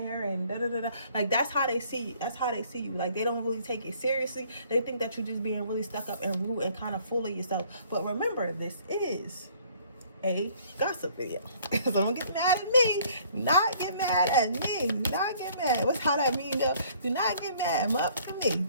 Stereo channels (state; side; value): inverted; both; correlation -0.58